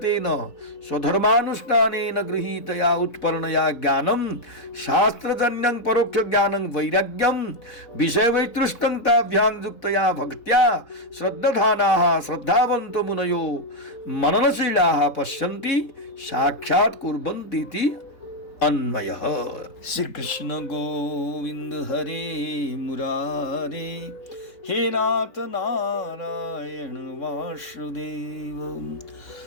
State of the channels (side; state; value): right; late; 3.7 ms